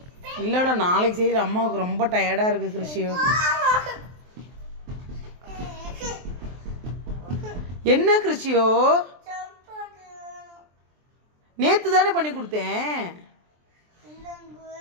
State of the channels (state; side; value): late; left; 23 ms